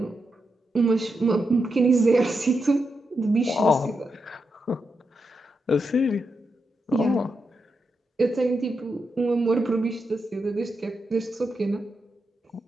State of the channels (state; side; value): normal; both; correlation 0.85